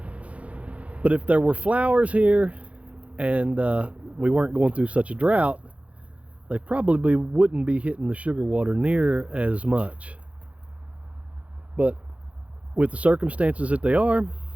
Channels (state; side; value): late; left; 0.065 ms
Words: But if there were flowers here and we weren't going through such a drought, they probably wouldn't be hitting the sugar water near as much. But with the circumstances that they are,